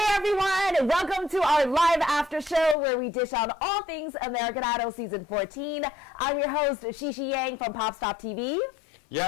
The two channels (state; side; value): drops out; right; at 2.8 s